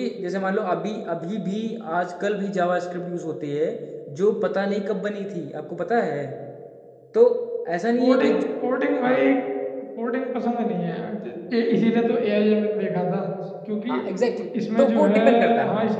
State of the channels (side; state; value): both; identical; correlation 1.00